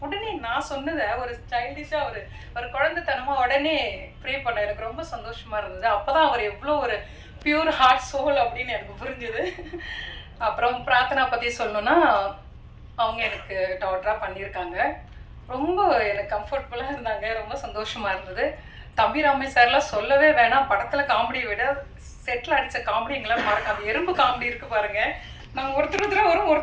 உடனே நான் சொன்னதை ஒரு சைல்டிஷாக ஒரு குழந்தைத்தனமாக உடனே ப்ரே பண்ண எனக்கு ரொம்ப சந்தோஷமாக இருந்தது. அப்போ தான் அவர் எவ்வளோ ஒரு பியூர் ஹார்ட் சோல் அப்படின்னு எனக்கு புரிஞ்சுது. அப்புறம் பிரார்த்தனா பற்றி சொல்லணுன்னா, அவங்க எனக்கு டாட்டராக பண்ணியிருக்காங்க. ரொம்ப எனக்கு கம்ஃபர்டபுளாக இருந்தாங்க, ரொம்ப சந்தோஷமாக இருந்தது. தம்பி ராமே சார்லாம் சொல்லவே வேணாம். படத்தில் காமெடியை விட செட்டில் அடித்த காமெடி எங்களால் மறக்க, அந்த எறும்பு காமெடி இருக்குது பாருங்கள். நாங்கள்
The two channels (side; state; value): both; identical; correlation 1.00